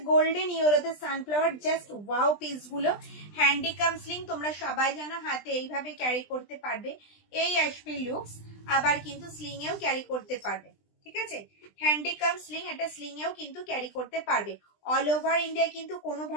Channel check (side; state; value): right; late; 20 ms